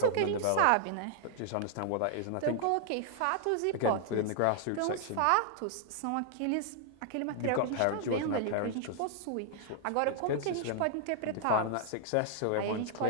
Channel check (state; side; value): different; both; correlation -0.01